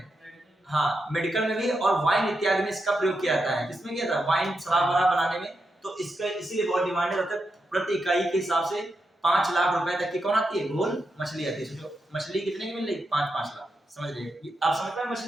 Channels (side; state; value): both; normal; correlation 0.86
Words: हाँ मेडिकल में भी, और वाइन इत्यादि में इसका प्रयोग किया जाता है। किसमें किया जाता है? वाइन, शराब वगैरह बनाने में, तो इसका इसीलिए बहुत डिमांड है। मतलब प्रति इकाई के हिसाब से 5 लाख रुपए तक की कौन आती है? घोल मछली आती है। सोचो मछली कितने की मिल रही? 5-5 लाख, समझ लीजिए। आप समझ पाए